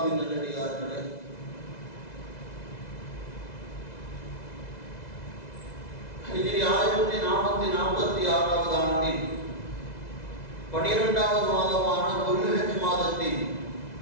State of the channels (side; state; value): right; late; 2.0 ms